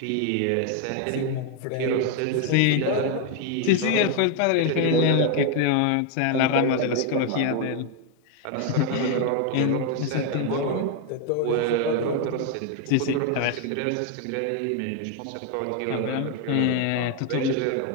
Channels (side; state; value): both; different; correlation 0.01